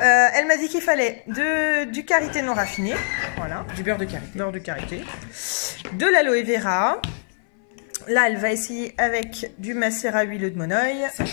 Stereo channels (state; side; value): silent; right; 60 dB below the other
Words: m'a dit qu'il fallait du karité non raffiné, voilà, Du beurre de karité. beurre de karité, de l'aloe vera. Là, elle va essayer avec du macérat huileux de monoeil.